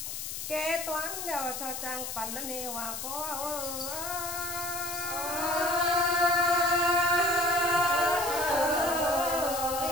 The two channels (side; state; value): left; noise; hiss, 6 dB below the sound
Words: kế toán đeo cho trang phần nó nên hòa có